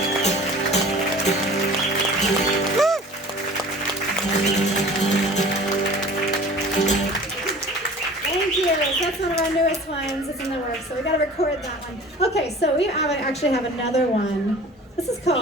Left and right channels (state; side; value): normal; both; correlation 0.43